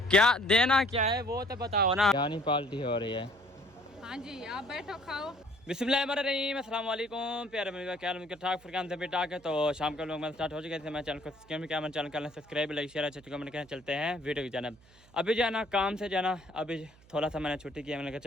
क्या देना क्या है वो तो बताओ ना। यानी पार्टी हो रही है। हाँ जी, आप बैठो खाओ। बिस्मिल्लाहिर्रहमानिर्रहीम, अस्सलाम वालेकुम प्यारे मेरे क्या ठाक फरकान से बेटा के। तो शाम का लोग मैं स्टार्ट हो चुके थे। मैं चैनल को क्या मैं चैनल कर सब्सक्राइब लाइक शेयर अच्छे कमेंट करें। चलते हैं वीडियो की जानब। अभी जो है ना काम से जो है ना अभी थोड़ा सा मैंने छुट्टी किया। मैंने कहा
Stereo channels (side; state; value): right; noise; hum, 27 dB below the sound